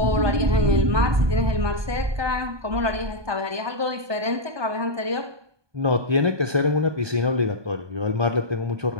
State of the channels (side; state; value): left; late; 1.2 ms